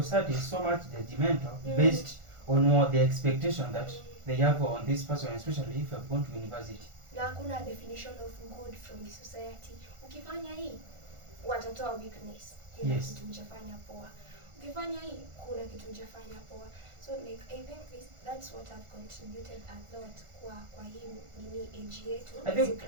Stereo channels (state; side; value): late; left; 1.4 ms